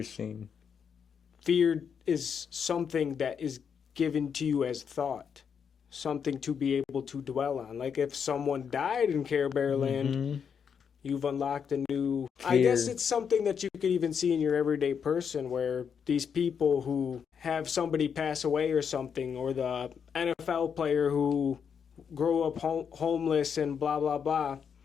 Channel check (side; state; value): right; quieter; 7.0 dB